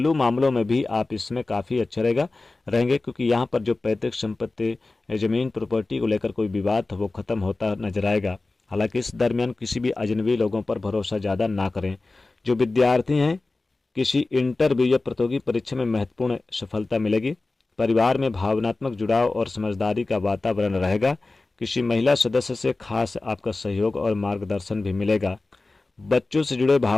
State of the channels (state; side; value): quieter; right; 3.3 dB